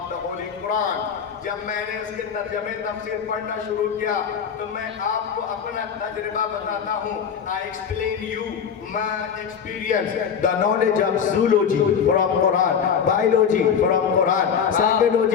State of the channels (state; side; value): quieter; right; 7.2 dB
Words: the Holy Quran, जब मैंने उसके तर्जमे तफसीर पढ़ना शुरू किया तो मैं आपको अपना तजुर्बा बताता हूँ। I explain you my experience, the knowledge of zoology from Quran, biology from Quran,